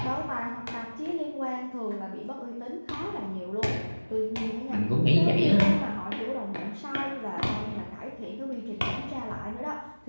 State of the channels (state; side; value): inverted; both; correlation -1.00